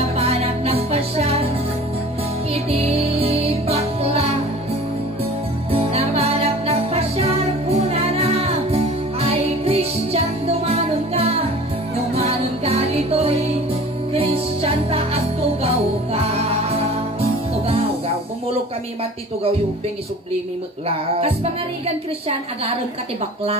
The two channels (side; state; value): both; normal; correlation 0.43